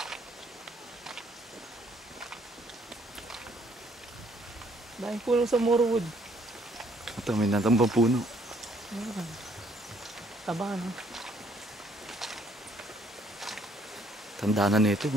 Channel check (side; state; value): both; normal; correlation 0.65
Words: Daming puno sa Morewood. Ito, may natambang puno. Taba, no? Tanda na nito.